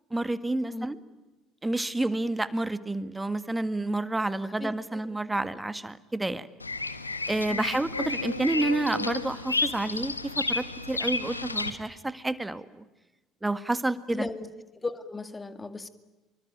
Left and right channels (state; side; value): normal; both; correlation 0.60